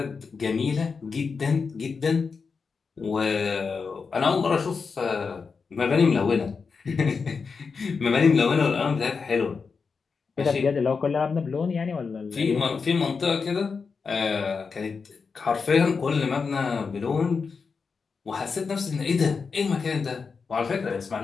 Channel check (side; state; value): right; quieter; 5.2 dB